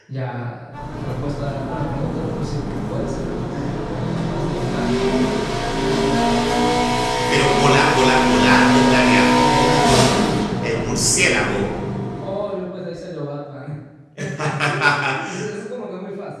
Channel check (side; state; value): both; identical; correlation 1.00